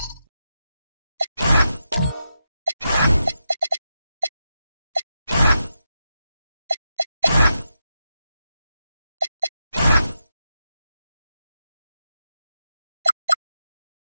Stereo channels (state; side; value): inverted; both; correlation -0.87